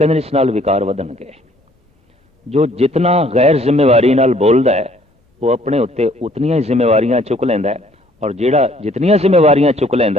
इस नाल विकार वधणगे। जो जितना गैर जिम्मेवारी नाल बोलदा है वो अपने उत्ते उतनियां ही जिम्मेवारियां चुक लैंदा है और जिहड़ा जितनियां जिम्मेवारियां चुक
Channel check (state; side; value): normal; both; correlation 0.60